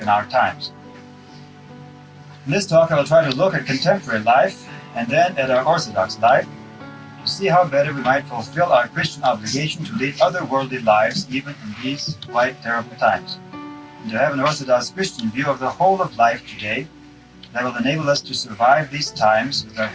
in our times. In this talk, I will try to look at contemporary life and then at our Orthodox life to see how better we might fulfill our Christian obligation to lead otherworldly lives even in these quite terrible times, and to have an Orthodox Christian view of the whole of life today that will enable us to survive these times with our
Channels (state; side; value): identical; both; correlation 1.00